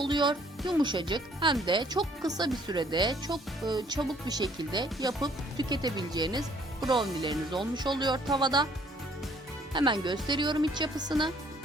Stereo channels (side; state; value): both; normal; correlation 0.61